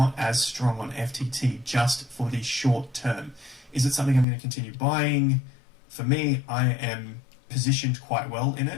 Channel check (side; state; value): right; drops out; at 4.2 s